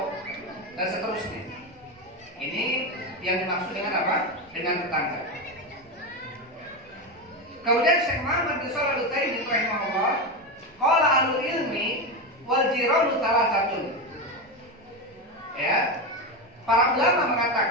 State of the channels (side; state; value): right; noise; rumble, 29 dB below the sound